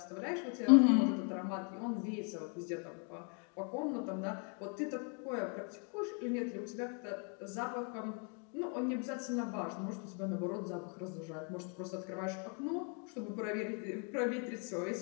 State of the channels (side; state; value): right; quieter; 39.0 dB